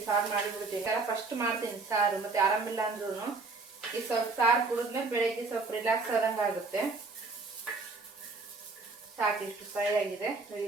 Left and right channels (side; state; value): left; quieter; 3.9 dB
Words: ಸಾರು ಮಾಡಿಬಿಡ್ತೀನಿ. ಫಸ್ಟ್ ಮಾಡ್ತೀನಿ ಸಾರು, ಮತ್ತು ಆರಾಮಿಲ್ಲ ಅಂದ್ರೂ ಈ ಸ್ವಲ್ಪ ಸಾರು ಕುಡಿದ್ಮೇಲೆ ಬೆಳಗ್ಗೆ ಸ್ವಲ್ಪ ರಿಲ್ಯಾಕ್ಸ್ ಆದಂಗೆ ಆಗುತ್ತೆ. ಸಾಕು, ಇಷ್ಟು ಫ್ರೈ ಆಗಿದೆ.